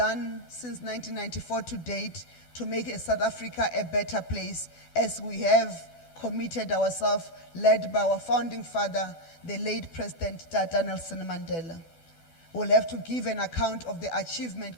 since 1994 to date to make South Africa a better place, as we have committed ourselves, led by our founding father, the late President Tata Nelson Mandela. We'll have to give an account of the achievement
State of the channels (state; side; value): late; right; 12 ms